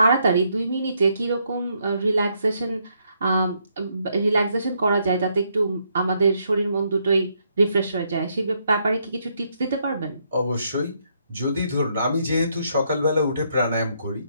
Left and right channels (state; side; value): inverted; both; correlation -0.75